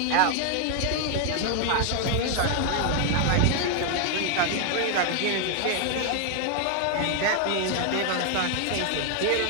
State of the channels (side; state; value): both; different; correlation 0.00